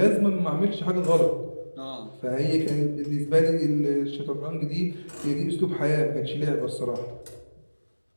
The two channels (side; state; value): both; inverted; correlation -1.00